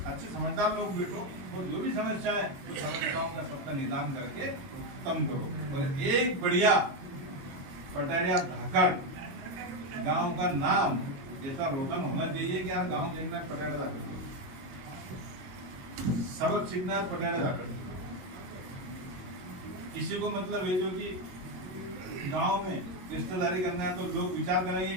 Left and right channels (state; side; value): late; left; 22 ms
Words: अच्छे समझदार लोग बैठो और जो भी समस्या है उस समस्याओं का सबका निदान करके खत्म करो। और एक बढ़िया पटारिया धाकड़ गांव का नाम ऐसा रोशन होना चाहिए कि यार गांव देखना पटारिया धाकड़, सबक सीखना पटारिया धाकड़। किसी को मतलब है जो कि गांव में रिश्तेदारी करना है तो लोग विचार करेंगे